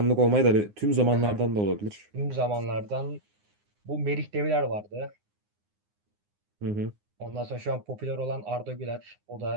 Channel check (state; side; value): late; left; 9.7 ms